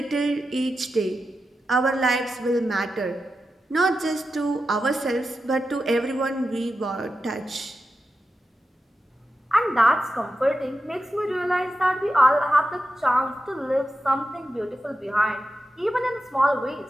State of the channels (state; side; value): normal; both; correlation 0.90